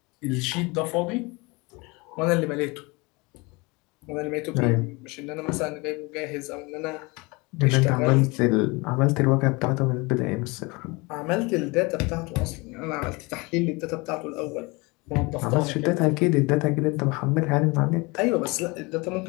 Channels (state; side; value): quieter; right; 26.1 dB